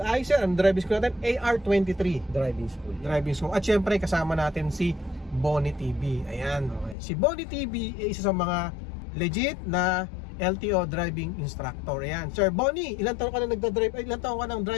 ay sir, ang driving school natin AR23 driving school. At syempre kasama natin si Bonnie TV. Ayan, Okay. si Bonnie TV ay isa sa mga legit na LTO driving instructor. Ayan, Sir Bonnie, ilang taon ka na nagda-drive? Ilang taon ka ng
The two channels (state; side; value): drops out; right; at 7.0 s